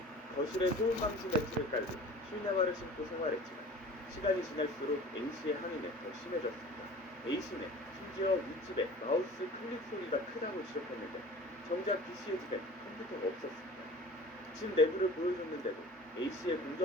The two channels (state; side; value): normal; both; correlation 0.42